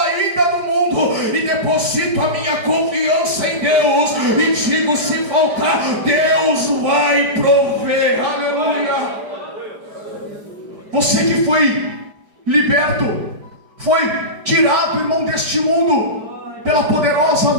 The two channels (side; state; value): left; late; 4.9 ms